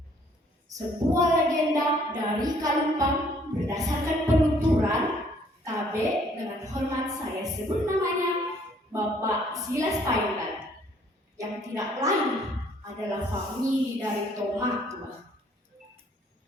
Sebuah legenda dari Kalumpang berdasarkan penuturan KB dengan hormat saya sebut namanya Bapak Silas Payungan, yang tidak lain adalah famili dari Tomatua,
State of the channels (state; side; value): normal; both; correlation 0.62